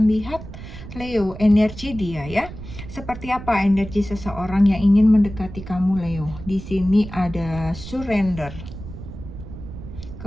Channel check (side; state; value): right; noise; rumble, 12 dB below the sound